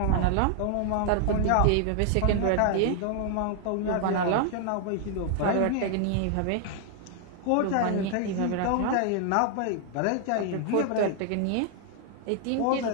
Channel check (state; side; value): different; both; correlation 0.00